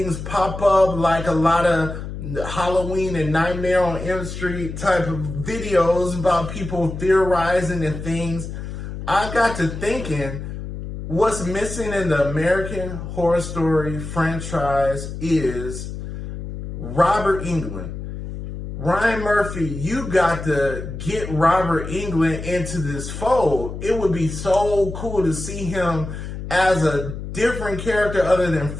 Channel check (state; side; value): noise; left; hum, 8 dB below the sound